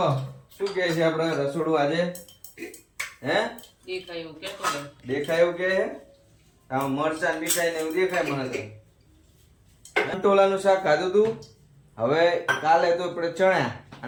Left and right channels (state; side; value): identical; both; correlation 1.00